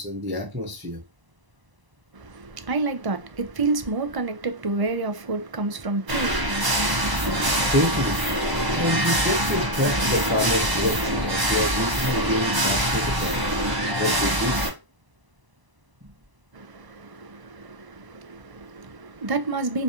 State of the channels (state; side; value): late; left; 1.0 ms